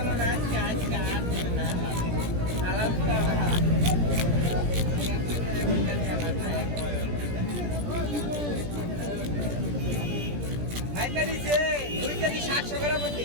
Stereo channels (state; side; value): late; left; 17 ms